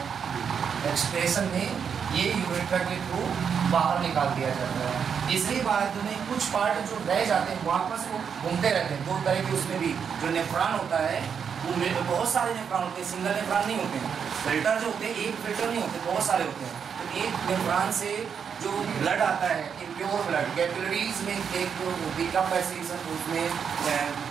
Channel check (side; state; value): left; quieter; 7.0 dB